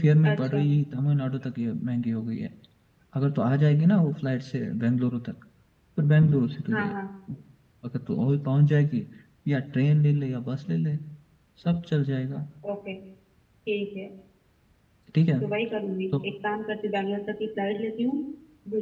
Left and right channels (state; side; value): identical; both; correlation 1.00